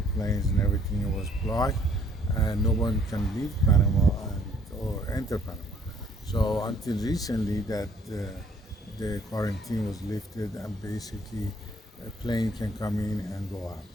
planes and everything was blocked, and no one can leave Panama or enter Panama. So until recently, that the quarantine was lifted, and basically a plane can come in and go out.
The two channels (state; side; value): normal; both; correlation 0.62